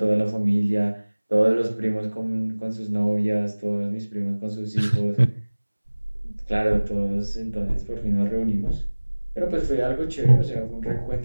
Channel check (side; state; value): both; inverted; correlation -1.00